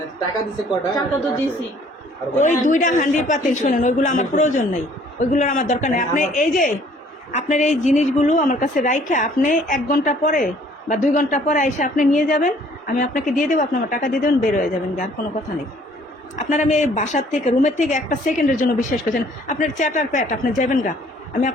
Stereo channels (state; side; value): normal; both; correlation 0.58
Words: টাকা দিছে কটা? টাকা তো দিছি। ওই 2টা হান্ডি পাতিল শোনেন, ওইগুলো আমার প্রয়োজন নেই, ওইগুলোর আমার দরকার নেই। আপনি এই যে আপনার এই জিনিসগুলো আমার কাছে রাইখা আপনি 1 ঘন্টা পরে বা 2 ঘন্টা পরে এসে আপনি নিয়ে যাবেন, আমি আপনাকে দিয়ে দেবো, আপনি আমার টাকা দিয়ে দেবেন, বের হয়ে যাবেন, আর কোনো কথা নেই। আপনার আমি এই বাসার থেকে রুমের থেকে 1 সেকেন্ডের জন্য বিশ্বাস করছেন, আপনার চ্যাটার প্যাট, আপনি যাবেন গা, আমি